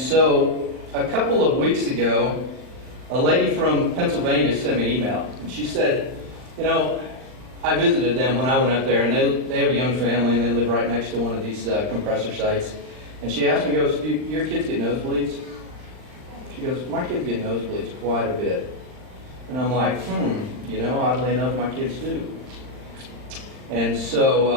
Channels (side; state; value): left; late; 39 ms